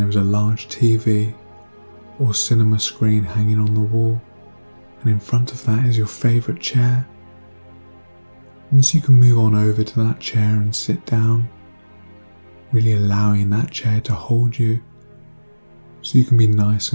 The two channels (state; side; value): inverted; both; correlation -1.00